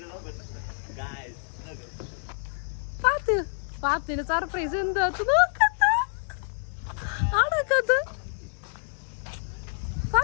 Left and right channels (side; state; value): right; silent; digital silence